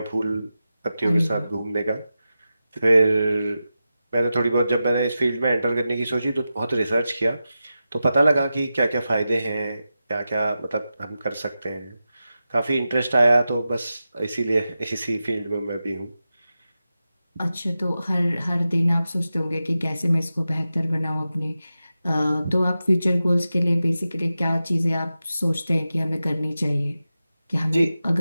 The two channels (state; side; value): inverted; both; correlation -0.92